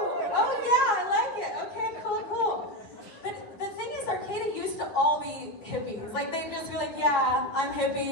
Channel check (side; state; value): right; late; 10 ms